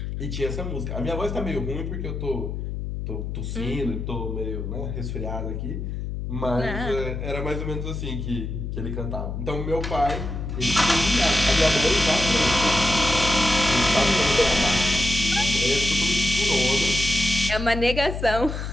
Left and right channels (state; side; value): noise; left; hum, 5 dB below the sound